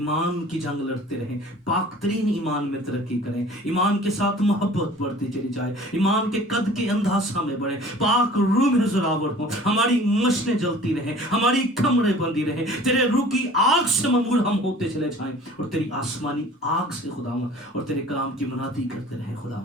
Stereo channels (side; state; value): both; normal; correlation 0.46